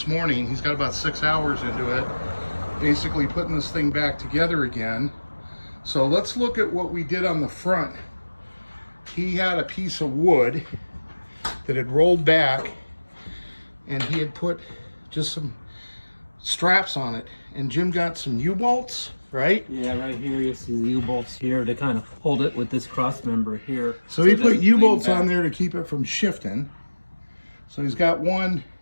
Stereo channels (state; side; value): inverted; both; correlation -1.00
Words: morning. He's got about 6 hours into it, basically putting this thing back together again. So let's look at what we did on the front. He had a piece of wood that had rolled back, and he had put just some straps on it. And Jim got some U-bolts, right? Yeah, right here you see the U-bolts here to kind of hold it with this cross member here. So he put U-bolts on there to keep it from shifting. So he's got one